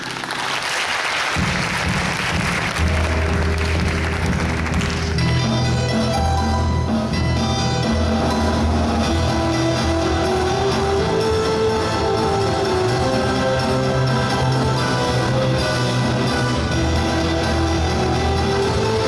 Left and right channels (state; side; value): identical; both; correlation 1.00